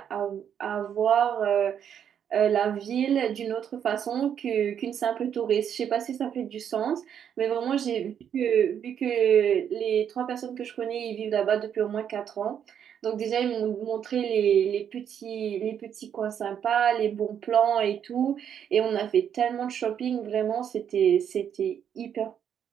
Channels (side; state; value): left; quieter; 8.7 dB